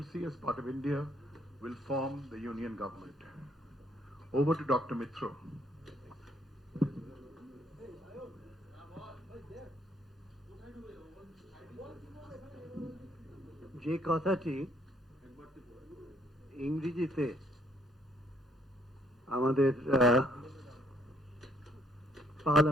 as part of India, will form the union government. Over to Dr. Mitro. যে কথাটি ইংরেজিতে আমাদের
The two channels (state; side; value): normal; both; correlation 0.67